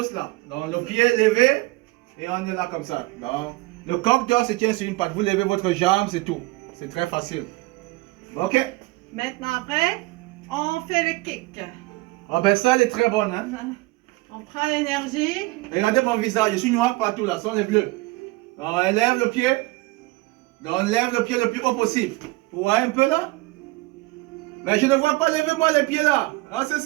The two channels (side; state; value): left; quieter; 22.2 dB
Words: là. Donc, le pied levé et on est là comme ça. Donc, le coq d'or se tient sur une patte. Vous levez votre jambe, c'est tout. C'est très facile. Ok. Maintenant après, on fait le kick. Ah ben ça, elle est très bonne. Hein? On prend l'énergie. Regardez mon visage, je suis noir partout là, ce sont les bleus. Donc, elle lève le pied. Donc, on lève le pied le plus haut possible. Vous voyez un peu là? Mais je ne vois pas, levez-moi les pieds là. Ah, c'est